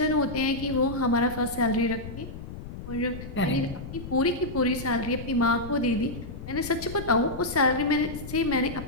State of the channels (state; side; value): noise; left; rumble, 11 dB below the sound